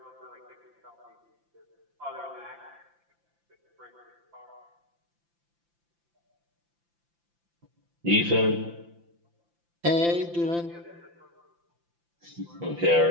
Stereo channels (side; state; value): left; late; 5.8 ms